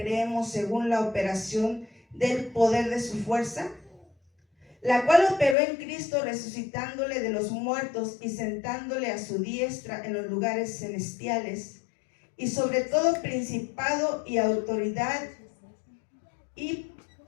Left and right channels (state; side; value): drops out; right; at 5.6 s